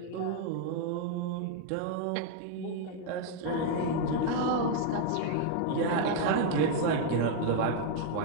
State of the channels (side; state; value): both; different; correlation 0.00